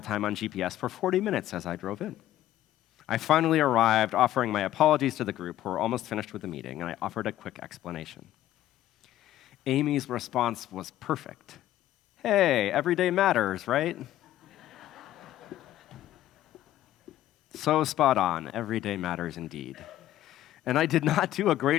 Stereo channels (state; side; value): quieter; right; 13.5 dB